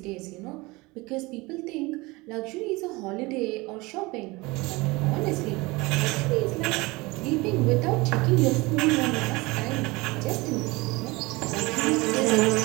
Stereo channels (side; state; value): left; quieter; 23.1 dB